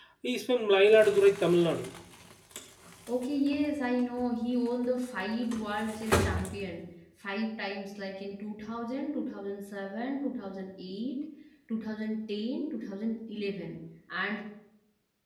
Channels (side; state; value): both; identical; correlation 1.00